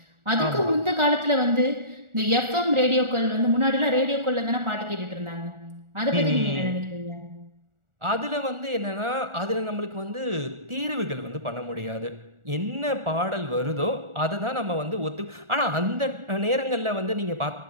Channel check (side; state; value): left; late; 1.4 ms